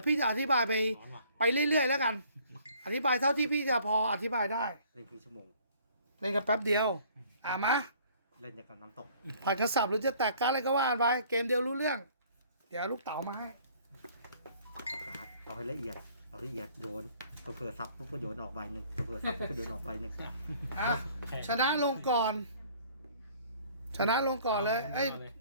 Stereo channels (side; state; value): both; inverted; correlation -0.57